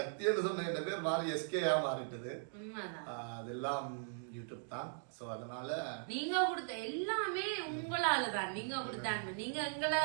என்று சொன்ன பேர் மாறி எஸ்கேயா மாறிட்டது. அதெல்லாம் யூடியூப் தான். சோ அதனால நீங்க கொடுத்த எல்லாமே உங்களால தான். நீங்க கொடுத்தாங்க. நீங்க எங்களை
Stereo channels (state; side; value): silent; left; digital silence